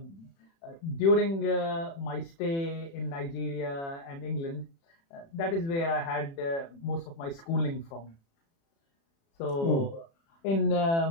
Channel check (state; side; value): late; right; 36 ms